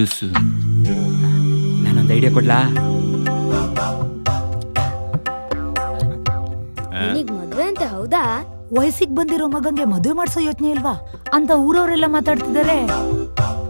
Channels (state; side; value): inverted; both; correlation -1.00